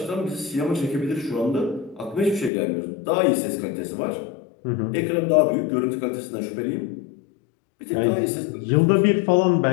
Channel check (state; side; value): drops out; right; at 2.5 s